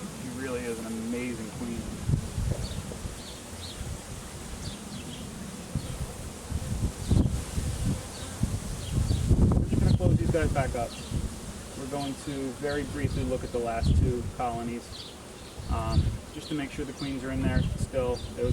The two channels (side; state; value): both; identical; correlation 1.00